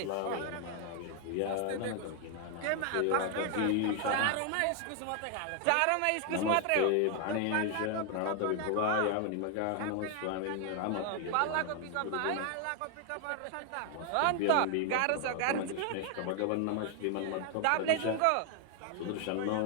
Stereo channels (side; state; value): both; different; correlation 0.00